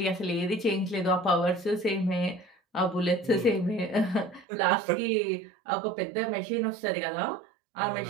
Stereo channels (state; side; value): drops out; left; at 4.5 s